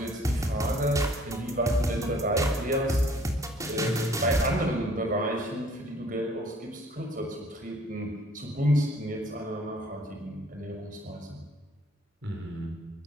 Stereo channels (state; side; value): normal; both; correlation 0.57